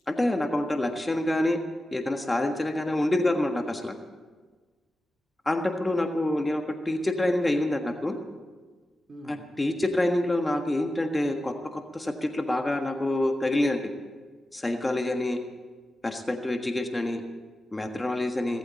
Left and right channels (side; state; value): both; normal; correlation 0.92